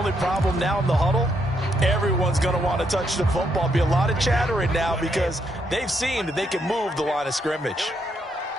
problem now in the huddle, everyone's going to want to touch the football. Be a lot of chattering now because they've seen that they can move the line of scrimmage.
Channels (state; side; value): normal; both; correlation 0.76